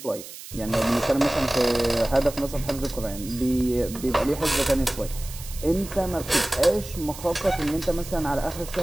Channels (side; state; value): right; noise; hiss, 14 dB below the sound